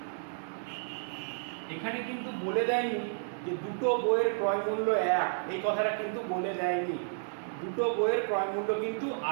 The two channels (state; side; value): silent; left; digital silence